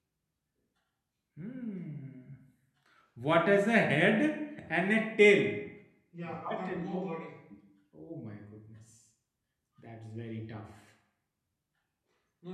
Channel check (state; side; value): identical; both; correlation 1.00